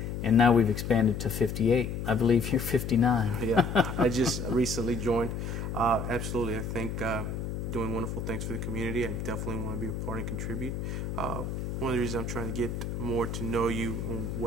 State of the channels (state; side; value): noise; left; hum, 4 dB below the sound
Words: and now we've expanded to 58. I believe you're 59. Yeah, I just recently joined. Absolutely, I think doing wonderful things for the community. I definitely want to be a part and contribute. One of the reasons I'm trying to get more to know you and